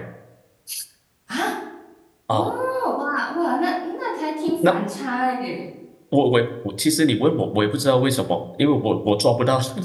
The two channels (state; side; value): identical; both; correlation 1.00